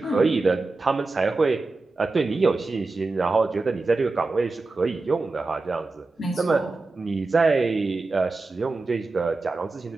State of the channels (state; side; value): quieter; left; 3.5 dB